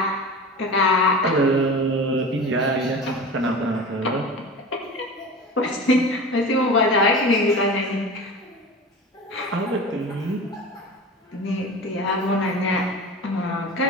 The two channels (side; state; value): both; normal; correlation 0.33